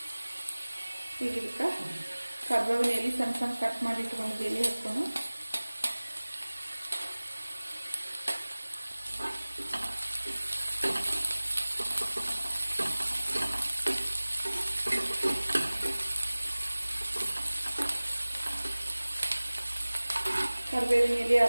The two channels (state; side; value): inverted; both; correlation -1.00